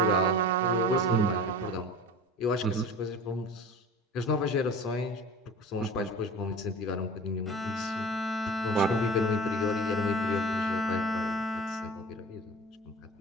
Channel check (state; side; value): normal; both; correlation 0.37